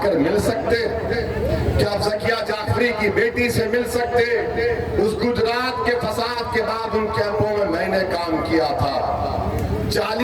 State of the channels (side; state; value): both; identical; correlation 1.00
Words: मिल सकते? क्या ज़किया जाफरी की बेटी से मिल सकते? उस गुजरात के फसाद के बाद उन कैंपों में मैंने काम किया था।